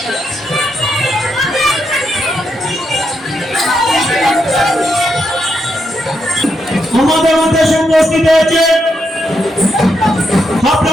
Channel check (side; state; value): both; normal; correlation 0.81